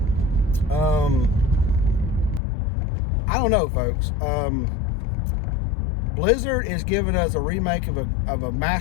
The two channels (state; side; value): drops out; right; at 2.4 s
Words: I don't know, folks. Blizzard is giving us a remake of a